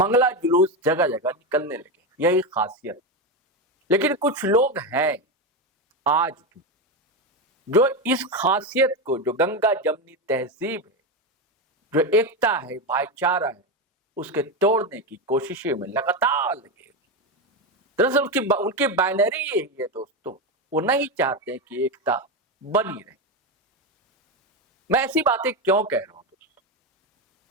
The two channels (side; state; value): both; normal; correlation 0.13